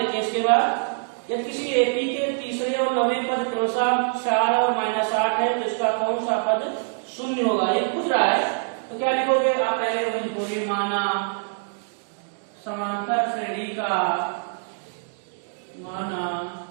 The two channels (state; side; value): silent; left; 62 dB below the other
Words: इसके बाद यदि किसी एपी के तीसरे और 9वें पद क्रमशः 4 और -8 है तो इसका कौन सा पद शून्य होगा, ये पूछ रहा है। तो क्या लिखोगे आप, पहले वही लिखोगे, माना समांतर श्रेणी का